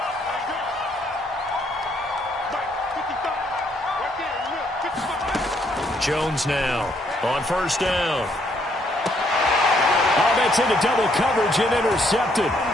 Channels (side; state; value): both; normal; correlation 0.70